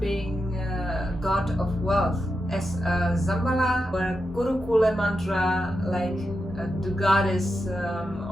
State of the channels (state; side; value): normal; both; correlation 0.88